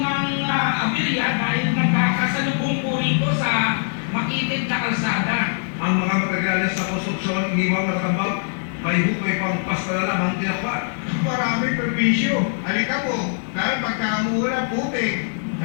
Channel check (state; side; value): silent; right; digital silence